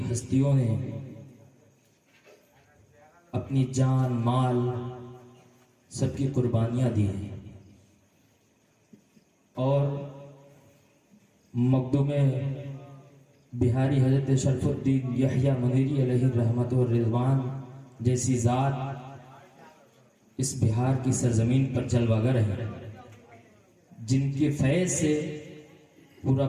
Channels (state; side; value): identical; both; correlation 1.00